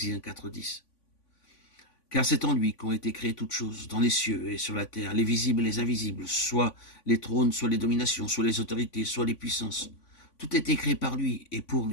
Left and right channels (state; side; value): late; right; 3.5 ms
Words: 4, 10. Car c'est en lui qu'ont été créées toutes choses, dans les cieux et sur la terre, les visibles et les invisibles, soit les trônes, soit les dominations, soit les autorités, soit les puissances. Tout a été créé par lui et pour